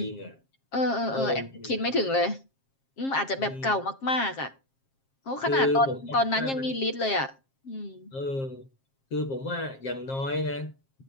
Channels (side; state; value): right; late; 7.5 ms